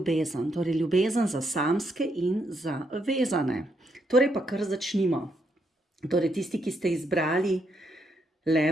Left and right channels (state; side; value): normal; both; correlation 0.77